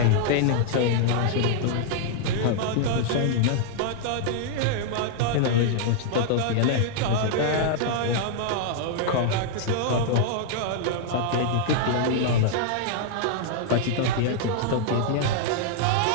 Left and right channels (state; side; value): different; both; correlation -0.01